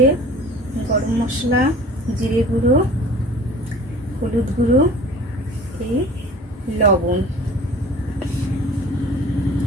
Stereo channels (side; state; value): both; normal; correlation 0.44